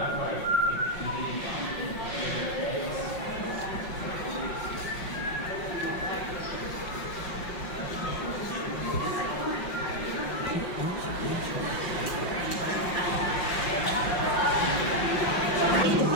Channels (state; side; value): late; right; 5.5 ms